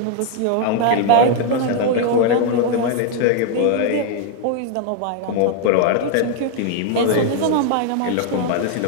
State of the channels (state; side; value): different; both; correlation 0.01